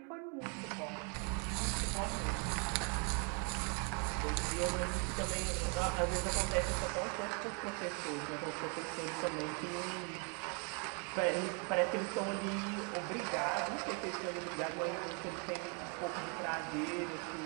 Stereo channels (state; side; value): quieter; left; 36.7 dB